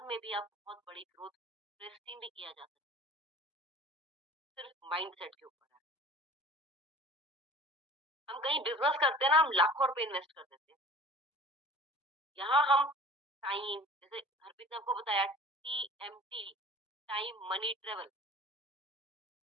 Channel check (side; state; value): both; normal; correlation 0.43